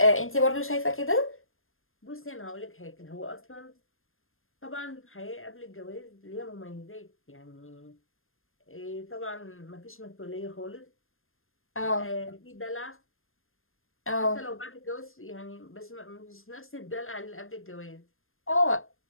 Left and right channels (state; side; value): late; right; 0.60 ms